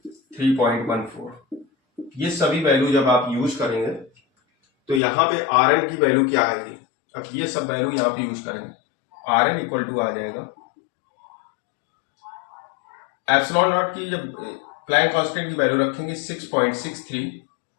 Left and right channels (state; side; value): drops out; right; at 5.0 s